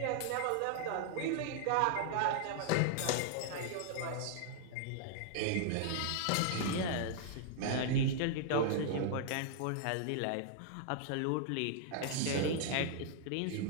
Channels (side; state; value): both; different; correlation -0.01